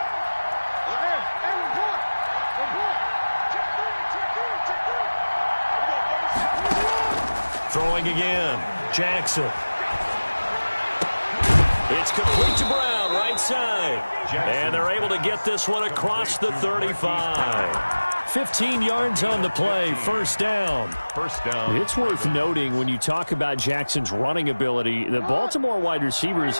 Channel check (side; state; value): both; inverted; correlation -1.00